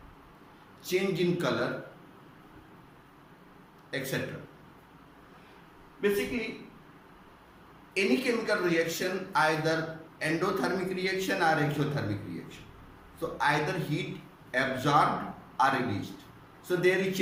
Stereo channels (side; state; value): both; identical; correlation 1.00